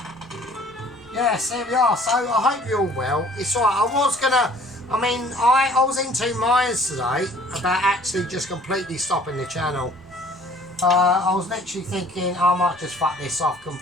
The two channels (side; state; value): both; normal; correlation 0.54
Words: Yes, there we are. So I hope you're all well. It's alright. I was in two minds today about actually just completely stopping the channel. I was literally thinking I might just fuck this off